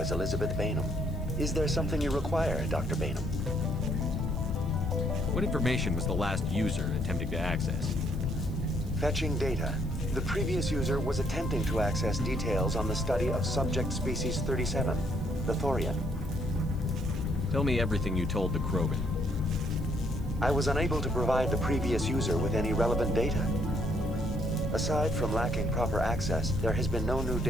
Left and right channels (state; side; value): noise; right; hiss, 27 dB below the sound